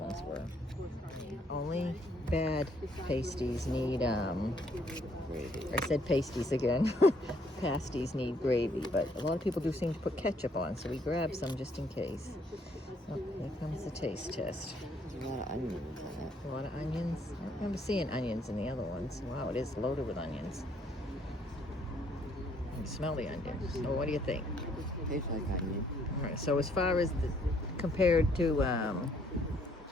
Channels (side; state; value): both; normal; correlation 0.67